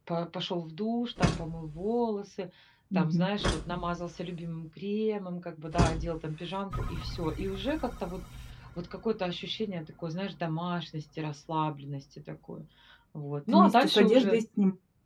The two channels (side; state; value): both; identical; correlation 1.00